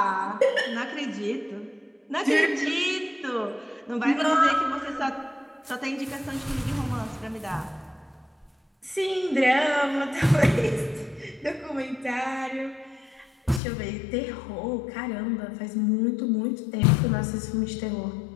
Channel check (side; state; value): right; drops out; at 13.6 s